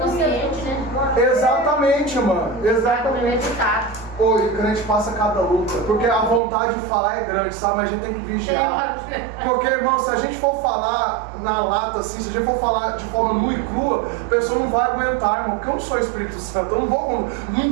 Exatamente, mano. Exatamente. Oi, o crente passa cada luta, porque a vontade de falar é grande, sabe? Mas a gente tem que vigiar. Porque, irmão, se a gente for falar na lata, assim, se a gente for falar de forma nua e crua, a pessoa não vai aguentar, irmão. Porque eu não sou Espírito Santo, eu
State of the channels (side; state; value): left; drops out; at 6.4 s